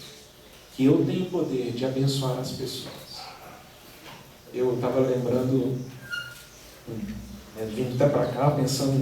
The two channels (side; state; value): both; identical; correlation 1.00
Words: que eu tenho o poder de abençoar as pessoas. Eu estava lembrando, vindo até para cá,